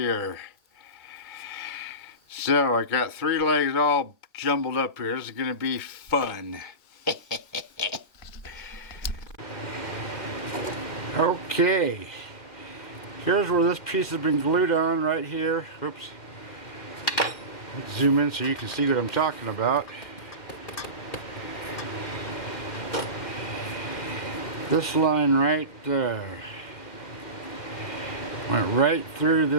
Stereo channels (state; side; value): late; right; 2.2 ms